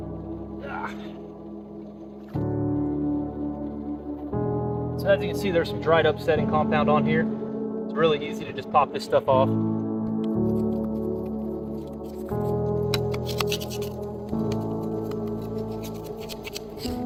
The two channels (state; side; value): identical; both; correlation 1.00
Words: So as you can see, there's some dried up setting compound on here. It's really easy to just pop this stuff off.